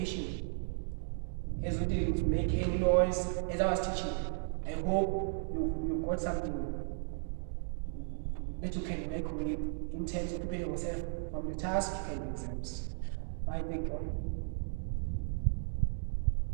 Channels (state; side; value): silent; left; digital silence